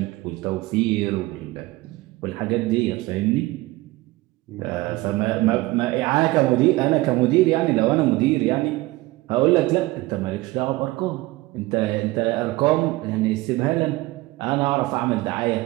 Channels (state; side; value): quieter; left; 19.7 dB